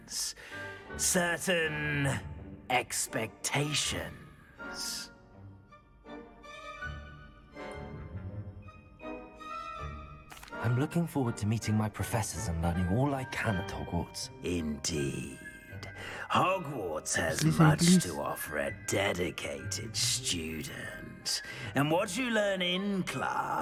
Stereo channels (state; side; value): identical; both; correlation 1.00